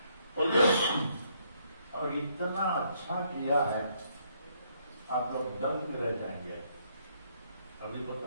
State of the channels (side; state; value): both; inverted; correlation -0.71